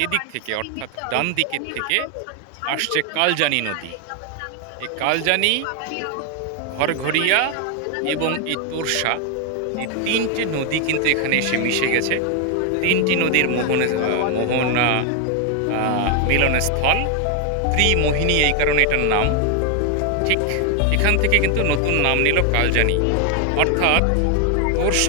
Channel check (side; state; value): both; different; correlation 0.01